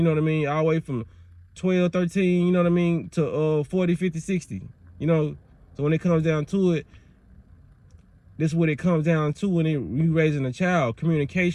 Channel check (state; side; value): identical; both; correlation 1.00